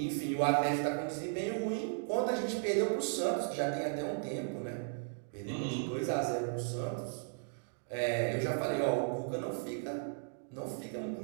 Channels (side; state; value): left; silent; digital silence